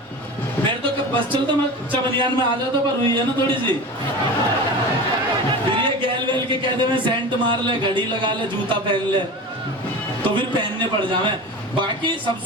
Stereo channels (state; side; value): normal; both; correlation 0.31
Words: मेरे तो बस चलता मैं चबनियान में आ जाता, पर हुई है ना थोड़ी सी, फिर ये गैल वैल के कहते मैं सेंट मार ले, घड़ी लगा ले, जूता पहन ले, तो फिर पहनने पड़ जावे। बाकी